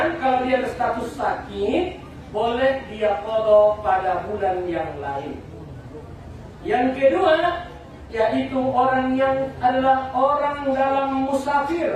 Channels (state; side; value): identical; both; correlation 1.00